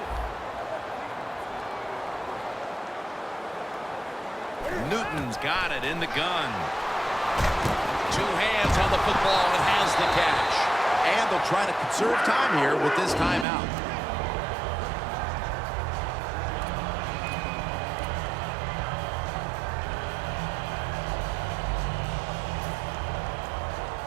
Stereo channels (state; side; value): drops out; left; at 13.5 s